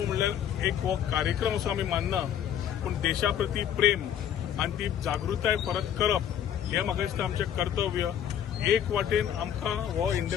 म्हणल्यार एक हो कार्यक्रम असो आमी मानना, पूण देशा प्रती प्रेम आनी ती जागृताय परत करप हें म्हाका दिसता आमचें कर्तव्य. एक वाटेन आमकां हो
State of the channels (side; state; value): right; quieter; 9.7 dB